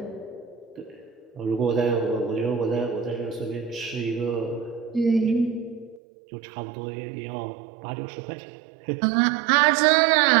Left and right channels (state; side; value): drops out; left; at 6.0 s